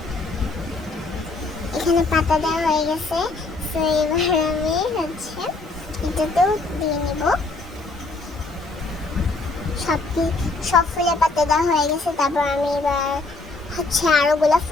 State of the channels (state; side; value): quieter; right; 3.4 dB